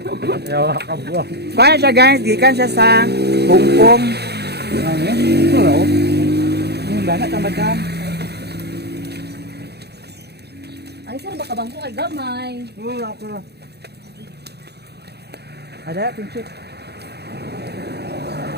Yawa ka buwan. Kaya siya guys, gikan siya sa Hong Kong. Wala oh. Yung lana ka madam. Ay, saan ba kabangko kay gamay? Wala ako na. Ada, pinchit.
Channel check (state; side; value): late; left; 0.48 ms